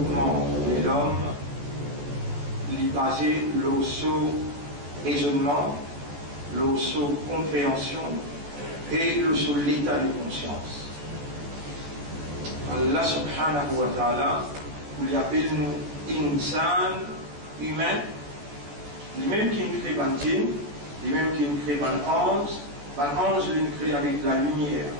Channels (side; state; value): left; late; 14 ms